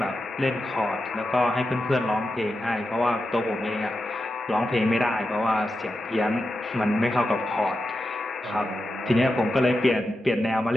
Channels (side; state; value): both; normal; correlation 0.89